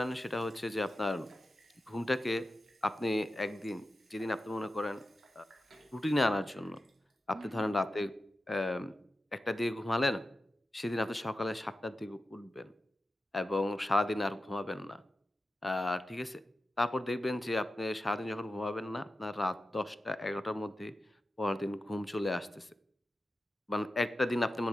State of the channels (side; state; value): both; normal; correlation 0.92